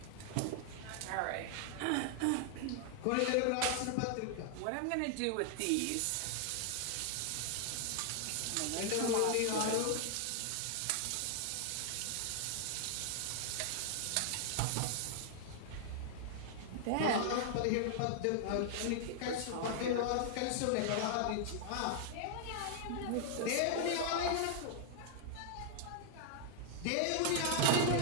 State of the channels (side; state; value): both; different; correlation 0.00